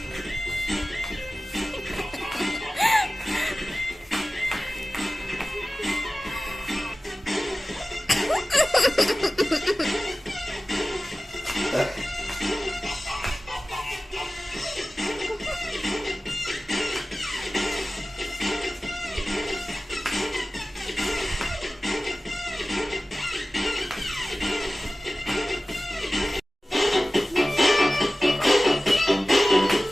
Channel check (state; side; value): normal; both; correlation 0.96